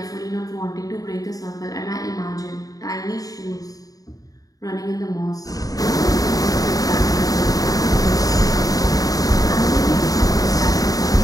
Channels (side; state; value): right; late; 0.18 ms